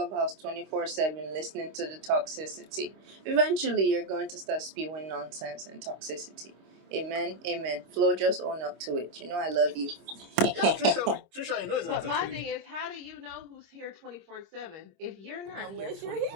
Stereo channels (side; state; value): left; late; 26 ms